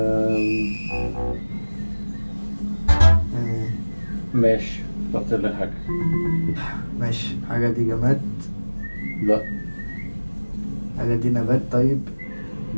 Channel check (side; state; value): both; inverted; correlation -1.00